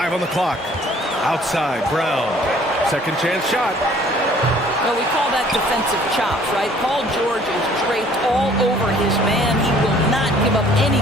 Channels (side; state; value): both; normal; correlation 0.56